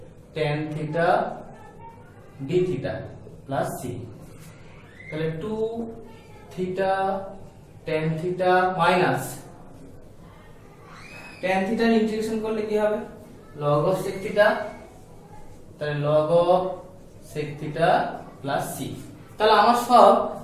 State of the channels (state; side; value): identical; both; correlation 1.00